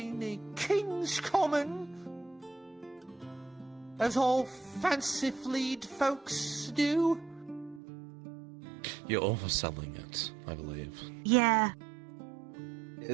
the King's Common, as all fancy-fleed folks do. You're overselling it, I believe. Yeah.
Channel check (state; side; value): drops out; left; at 7.8 s